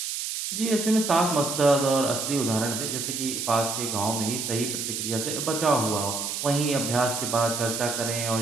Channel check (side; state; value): right; noise; hiss, 3 dB below the sound